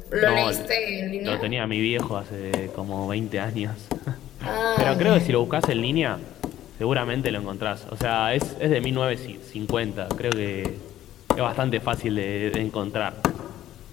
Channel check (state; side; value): quieter; right; 12.9 dB